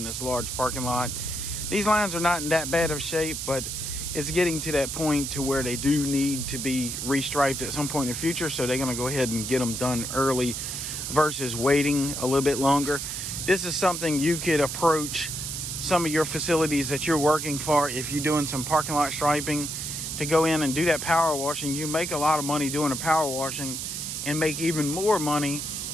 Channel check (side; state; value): right; noise; hiss, 5 dB below the sound